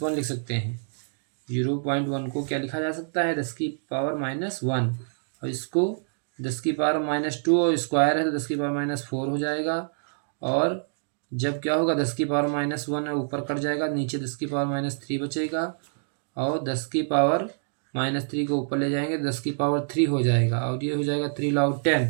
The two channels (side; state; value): left; silent; digital silence